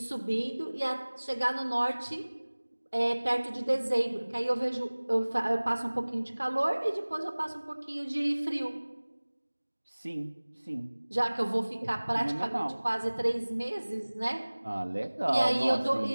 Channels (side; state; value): both; inverted; correlation -1.00